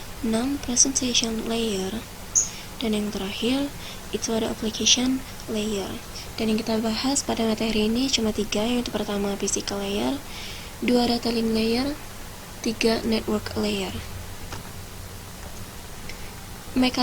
6 presentation layer, dan yang terakhir itu ada application layer. Dan yang kita bahas pada materi ini cuma 3, yaitu pertama physical layer, 2 data link layer, 3 network layer.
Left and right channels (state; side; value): identical; both; correlation 1.00